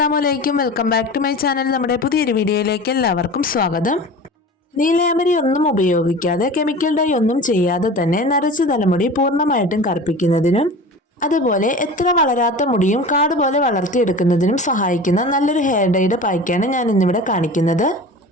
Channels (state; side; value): normal; both; correlation 0.35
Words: അലൈക്കും. Welcome back to my channel. നമ്മുടെ പുതിയൊരു വീഡിയോയിലേക്ക് എല്ലാവർക്കും സ്വാഗതം. നീലയാമരി ഒന്നും ഉപയോഗിക്കാതെ കെമിക്കൽ ഡൈ ഒന്നും ചെയ്യാതെ തന്നെ നരച്ച തലമുടി പൂർണ്ണമായിട്ടും കറുപ്പിക്കുന്നതിനും അതുപോലെ എത്ര വളരാത്ത മുടിയും കാട് പോലെ വളർത്തിയെടുക്കുന്നതിനും സഹായിക്കുന്ന നല്ലൊരു ഹെയർ ഡൈയുടെ പായ്ക്കാണ് ഞാൻ ഇന്നിവിടെ കാണിക്കുന്നത്.